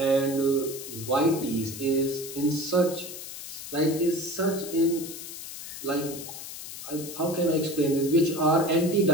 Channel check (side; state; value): left; noise; hiss, 10 dB below the sound